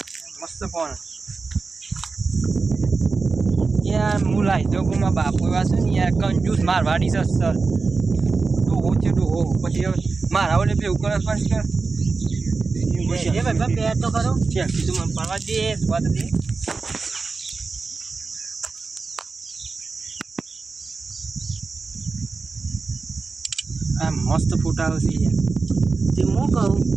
મસ્ત ફોન યાર હું લાવી દઉં કે મારા બાપુ એવા છે ને યાર કંજૂસ મારવાડી છે સર ડોહો છે ડોહો પછી મારા ઓલે પેલું કરે પણ કે ભાઈ બે તો કરો છે તું મને પાડવા દે સ્વાદ દે આ મસ્ત ફોટા આવશે યાર તે હું કહું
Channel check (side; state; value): left; quieter; 4.3 dB